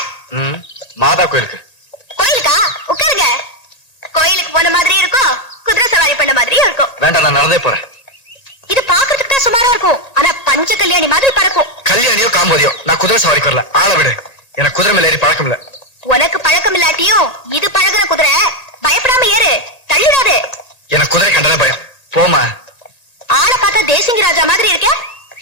மாதா கோயிலுக்கு. கோயிலுக்கா? உட்காருங்க. கோயிலுக்கு போன மாதிரி இருக்கும், குதிரை சவாரி பண்ண மாதிரியும் இருக்கும். வேண்டாம், நான் நடந்தே போறேன். இது பாக்குறதுக்கு தான் சுமாரா இருக்கும், ஆனா பஞ்ச கல்யாணி மாதிரி பறக்கும். கல்யாணியோ காம்போதியோ, நான் குதிரை சவாரிக்கு வரல. ஆள விடு, எனக்கு குதிரை மேல ஏறி பழக்கம் இல்ல. உனக்கு பழக்கம் இல்லாட்டியும் இது பழகுற குதிரை. பயப்படாம ஏறு, தள்ளிடாது. எனக்கு குதிரை கண்டதே பயம். போமா. ஆளை பார்த்தா தேசிங்க ராஜா மாதிரி இருக்க.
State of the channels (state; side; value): late; right; 1.8 ms